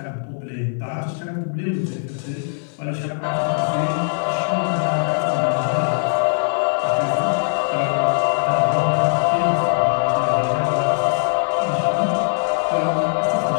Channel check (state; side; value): silent; right; 58 dB below the other